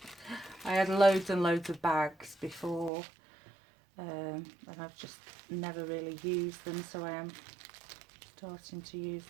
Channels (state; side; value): drops out; left; at 2.9 s